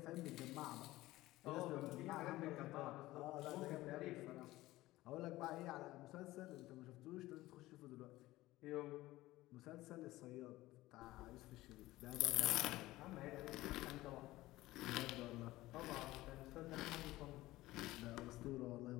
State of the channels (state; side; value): quieter; right; 17.6 dB